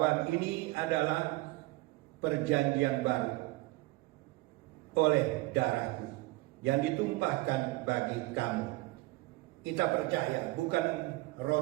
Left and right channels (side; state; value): left; quieter; 20.9 dB